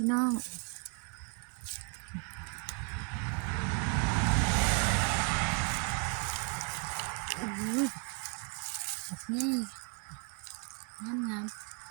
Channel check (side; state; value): left; quieter; 37.3 dB